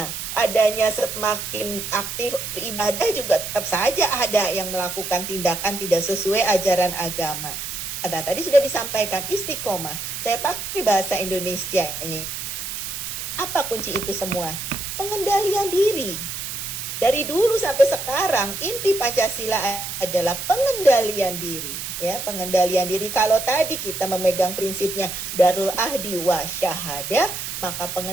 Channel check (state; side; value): noise; right; hiss, 6 dB below the sound